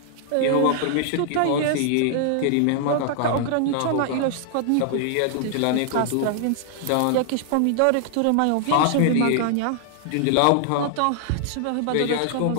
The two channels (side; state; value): both; different; correlation -0.01